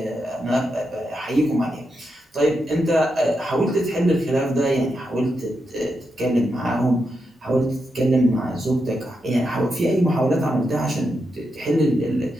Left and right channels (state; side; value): normal; both; correlation 0.85